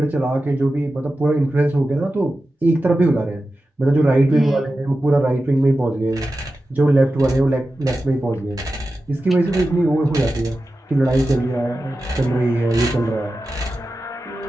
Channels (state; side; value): normal; both; correlation 0.93